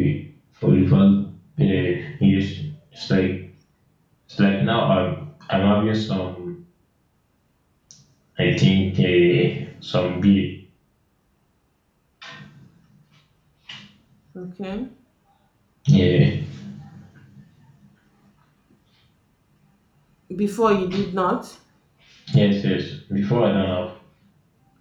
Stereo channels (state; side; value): identical; both; correlation 1.00